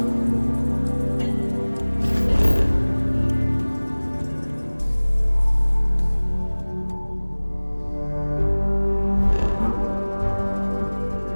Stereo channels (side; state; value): both; inverted; correlation -1.00